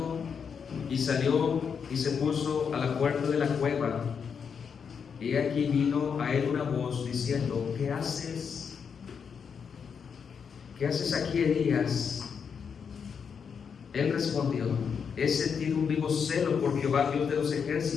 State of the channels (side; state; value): right; quieter; 6.6 dB